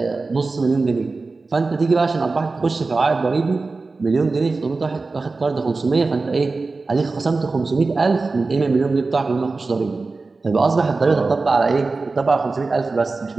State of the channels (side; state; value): left; quieter; 3.8 dB